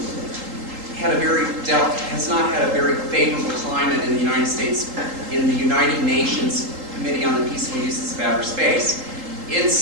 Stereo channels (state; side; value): late; left; 3.8 ms